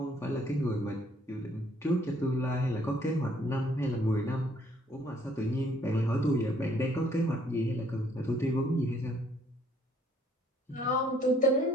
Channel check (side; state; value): both; normal; correlation 0.63